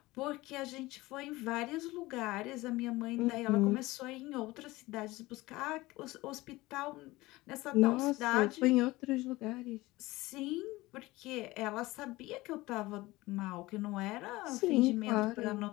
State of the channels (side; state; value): right; quieter; 19.8 dB